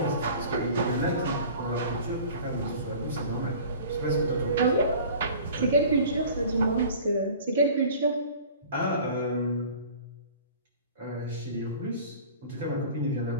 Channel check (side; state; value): both; inverted; correlation -0.44